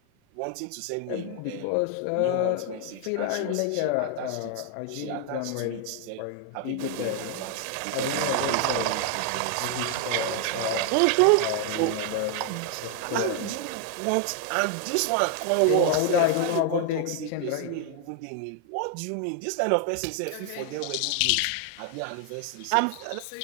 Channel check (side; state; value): both; different; correlation 0.00